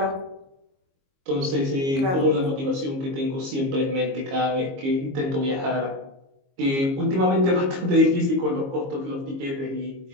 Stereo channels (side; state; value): left; late; 22 ms